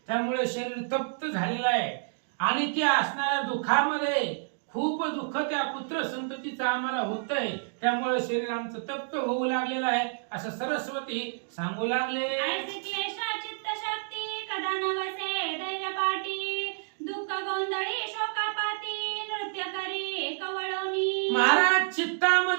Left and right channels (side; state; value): left; silent; digital silence